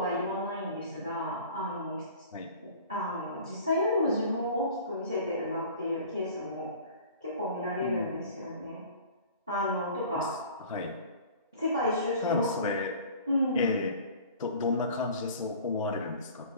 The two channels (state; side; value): inverted; both; correlation -0.44